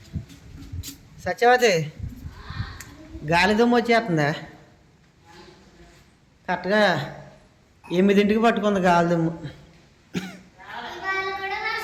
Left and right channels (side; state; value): both; identical; correlation 1.00